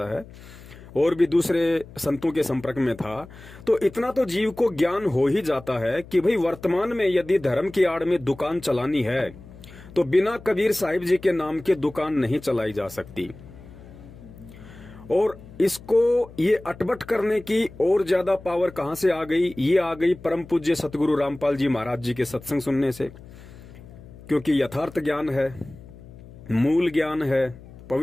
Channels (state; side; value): noise; left; hum, 19 dB below the sound